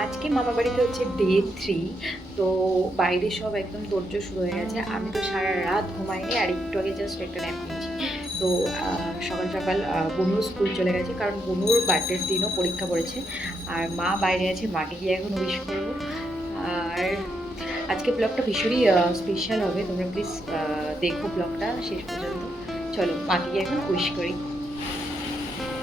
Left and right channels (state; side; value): normal; both; correlation 0.79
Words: আজকে মামা বাড়িতে হচ্ছে ডে 3। তো বাইরে সব একদম তোড়জোড় শুরু হয়ে গেছে। আমি তো সারা রাত ঘুমাইনি, আর একটু আগে জাস্ট একটা ন্যাপ নিয়েছি। তো সকাল সকাল বনুর স্কুল চলে গেছে, কারণ বনুর বার্থডের দিনও পরীক্ষা পড়েছে। আর মা বাইরে আছে, মাকে গিয়ে এখন উইশ করবো। আর আজকে ব্লগটা ভীষণই স্পেশাল হবে, তোমরা প্লিজ দেখো ব্লগটা শেষ পর্যন্ত। চলো মাকে গিয়ে এখন উইশ করি।